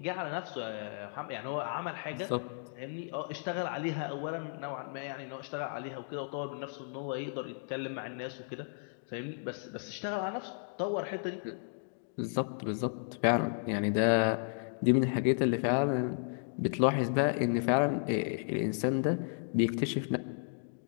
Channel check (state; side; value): silent; right; digital silence